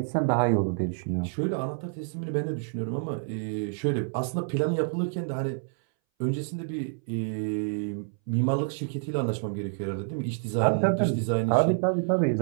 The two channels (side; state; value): left; silent; 59 dB below the other